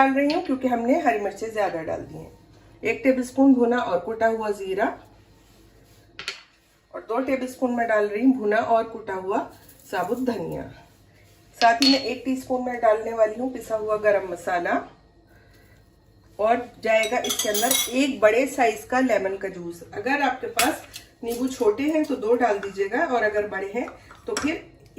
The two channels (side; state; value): both; identical; correlation 1.00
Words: रही हूँ क्योंकि हमने हरी मिर्चें ज्यादा डाल दी हैं। 1 टेबलस्पून भुना और कुटा हुआ जीरा और 2 टेबलस्पून में डाल रही हूँ भुना और कुटा हुआ साबुत धनिया। साथ ही में 1 टीस्पून में डालने वाली हूँ पिसा हुआ गरम मसाला। और जाएगा इसके अंदर 1 बड़े साइज का लेमन का जूस। अगर आपके पास नींबू छोटे हैं तो 2 डाल दीजिएगा और अगर बड़े हैं तो फिर